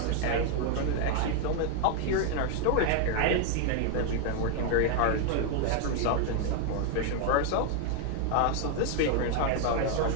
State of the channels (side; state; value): both; different; correlation 0.00